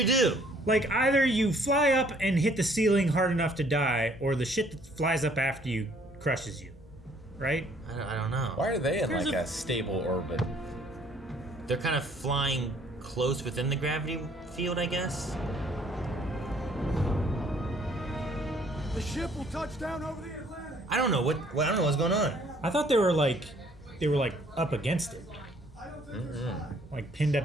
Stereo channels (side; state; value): both; normal; correlation 0.61